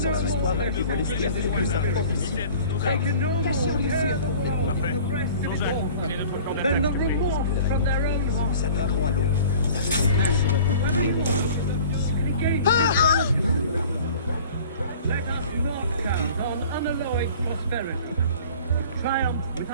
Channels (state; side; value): inverted; both; correlation -0.45